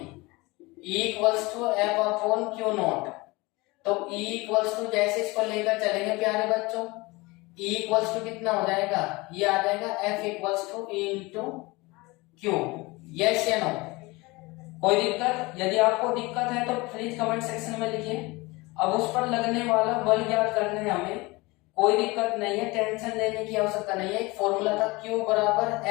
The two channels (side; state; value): right; quieter; 23.5 dB